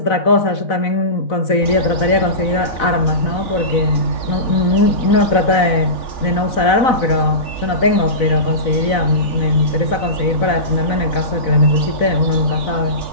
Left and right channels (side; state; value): right; late; 4.0 ms